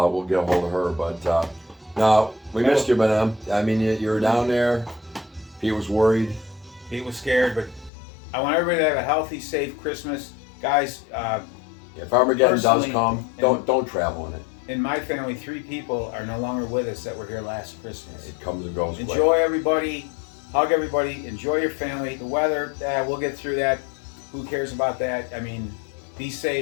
get a hold of her. But no, we missed you, madam. I mean, you were down there. Pete was worried. Pete was scared, but I want everybody to have a healthy, safe Christmas, guys. If Armageddon does Personally, come, don't travel in it. In my family, 3 people are no longer with us that were here last Christmas. It comes and goes. quick. Enjoy everybody. Hug everybody. Enjoy your family. The weather, we'll get through that. Who cares about that? I mean, be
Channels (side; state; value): right; drops out; at 7.9 s